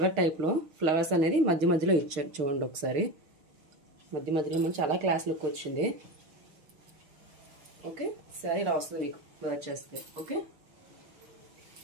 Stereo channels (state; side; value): late; left; 6.5 ms